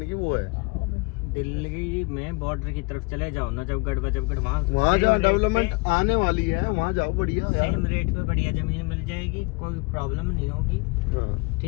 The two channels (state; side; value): quieter; right; 28.4 dB